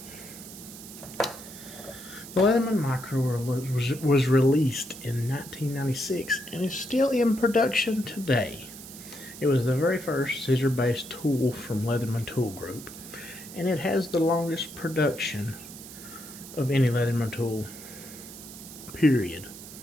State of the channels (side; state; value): right; noise; hiss, 14 dB below the sound